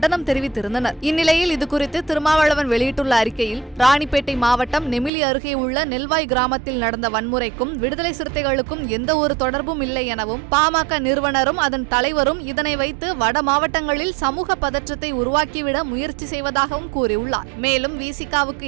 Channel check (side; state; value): left; drops out; at 5.1 s